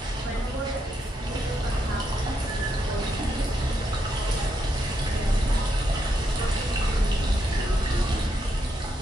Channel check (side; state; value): both; normal; correlation 0.80